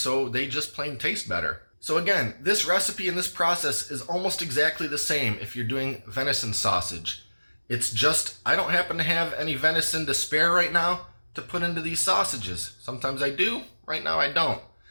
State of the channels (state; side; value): inverted; both; correlation -1.00